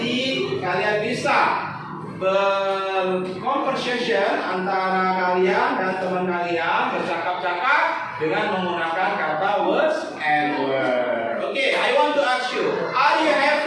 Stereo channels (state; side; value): identical; both; correlation 1.00